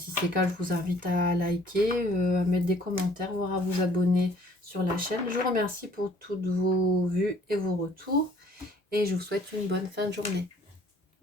c'est le cas, je vous invite à liker, à mettre des commentaires, voire à vous abonner sur la chaîne. Je vous remercie pour toutes vos vues et vos retours. Et je vous souhaite une bonne fin de journée.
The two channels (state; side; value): normal; both; correlation 0.58